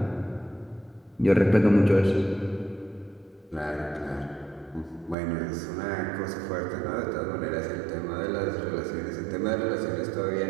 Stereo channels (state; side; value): drops out; left; at 5.2 s